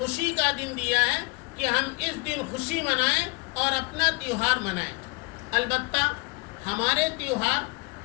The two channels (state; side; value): quieter; right; 29.6 dB